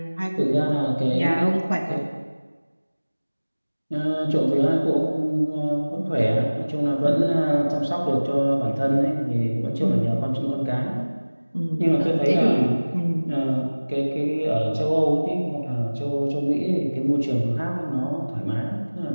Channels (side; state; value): both; inverted; correlation -1.00